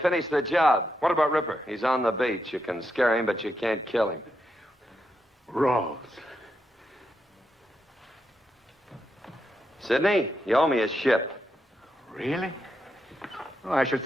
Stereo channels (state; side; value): normal; both; correlation 0.83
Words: the job. What about Ripper? He's on the beach. You can scare him, but you can't kill him. Ralls. Sidney, you owe me a ship. Really? Well, I should